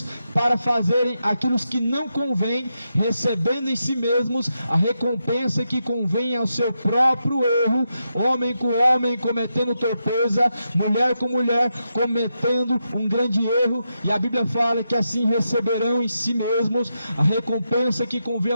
para fazerem aquilo que não convém, recebendo em si mesmos a recompensa que convém ao seu próprio erro, homem com homem cometendo torpeza, mulher com mulher cometendo um grande erro, e a Bíblia fala que assim receberão em si mesmos a recompensa que convém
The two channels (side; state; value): both; inverted; correlation -0.85